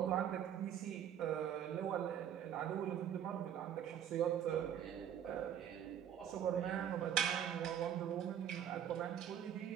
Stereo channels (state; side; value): quieter; left; 9.6 dB